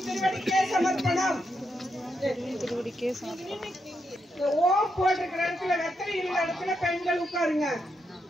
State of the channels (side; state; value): both; normal; correlation 0.82